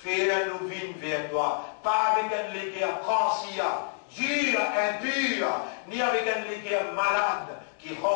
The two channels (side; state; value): right; silent; digital silence